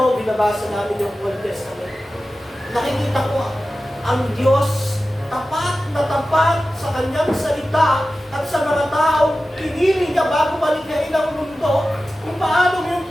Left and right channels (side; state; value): both; normal; correlation 0.94